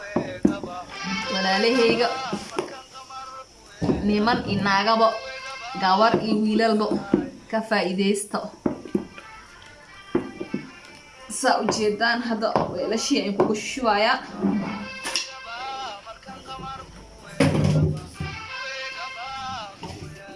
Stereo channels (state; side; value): identical; both; correlation 1.00